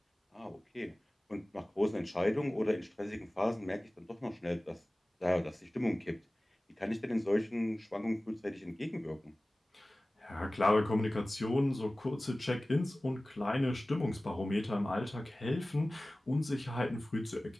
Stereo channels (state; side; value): normal; both; correlation 0.98